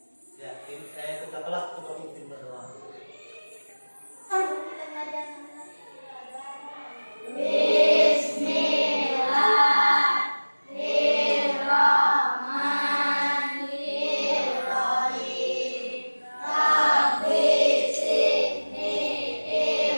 Ya, kita kelas untuk memimpin berdoa.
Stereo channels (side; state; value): both; inverted; correlation -1.00